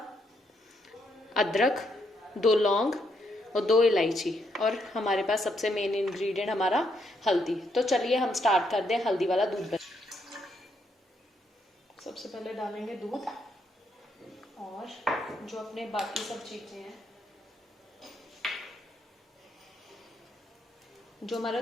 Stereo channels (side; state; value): both; normal; correlation 0.76